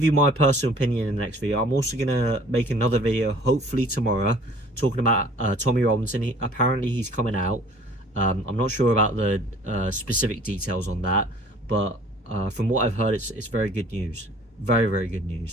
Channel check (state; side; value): normal; both; correlation 0.52